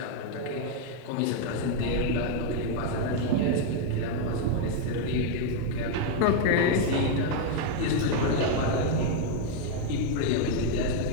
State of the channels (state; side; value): different; both; correlation 0.01